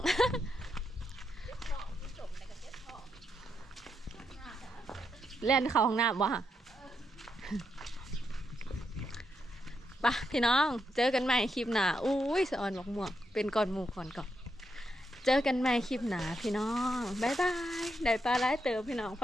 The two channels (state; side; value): normal; both; correlation 0.81